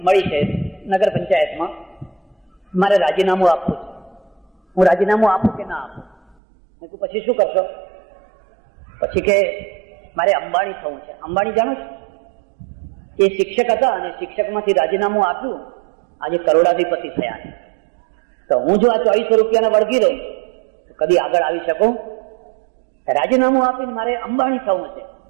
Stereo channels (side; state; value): left; drops out; at 6.4 s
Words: મળી છે નગર પંચાયતમાં, મારે રાજીનામું આપવું છે. હું રાજીનામું આપું કે ના આપું? મેં કહ્યું પછી શું કરશો? પછી કે મારે અંબાણી થવું છે. અંબાણી જાણો છો? એ શિક્ષક હતા અને શિક્ષકમાંથી રાજીનામું આપ્યું, આજે કરોડાધિપતિ થયા. તો હું જો આ 2400 રૂપિયાને વળગી રહું તો કદી આગળ આવી શકું? રાજીનામું આપીને મારે અંબાણી થવું છે.